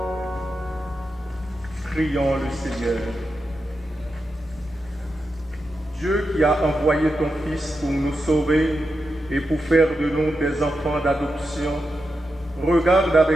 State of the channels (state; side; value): normal; both; correlation 0.88